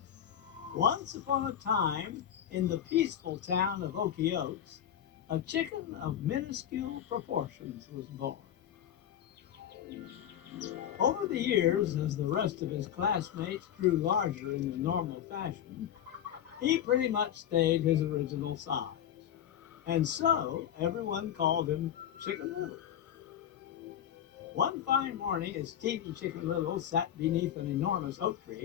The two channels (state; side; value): quieter; right; 10.1 dB